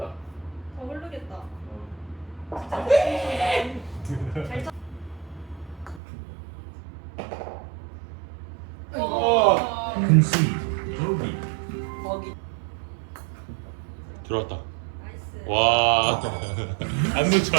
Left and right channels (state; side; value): drops out; left; at 6.0 s